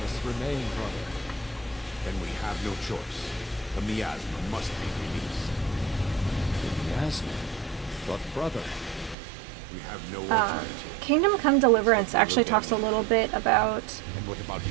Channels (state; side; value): drops out; left; at 9.2 s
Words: us remain, brother. Then we have no choice. The miasma must be released. The miasma. But brother, We have no alternative. Kingdom Come Deliverance actually talks a little bit about And what about you,